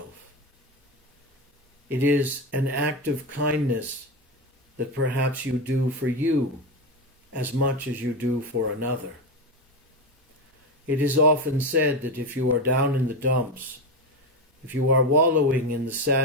It is an act of kindness that perhaps you do for you as much as you do for another. It is often said that if you are down in the dumps, if you are wallowing in the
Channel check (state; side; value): normal; both; correlation 0.14